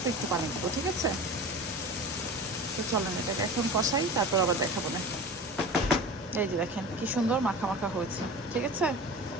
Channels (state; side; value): normal; both; correlation 0.34